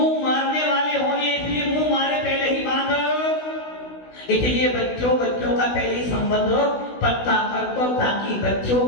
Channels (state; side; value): late; right; 16 ms